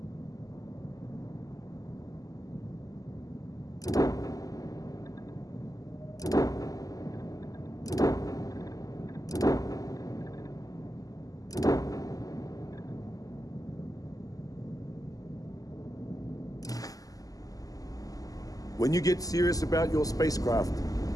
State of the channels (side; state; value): right; late; 0.17 ms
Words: When you get serious about your spacecraft,